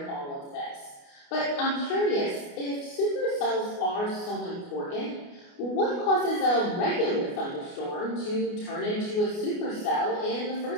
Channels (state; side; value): late; right; 29 ms